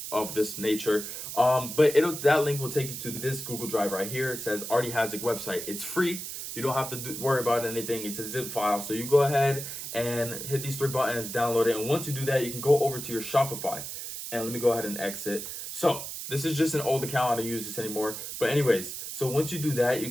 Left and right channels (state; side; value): noise; right; hiss, 7 dB below the sound